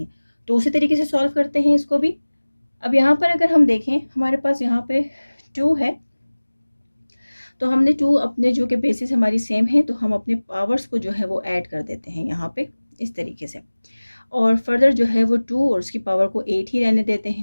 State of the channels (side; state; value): both; inverted; correlation -1.00